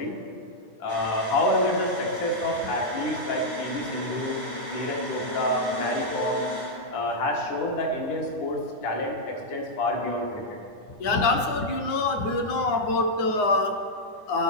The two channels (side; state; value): right; late; 9.7 ms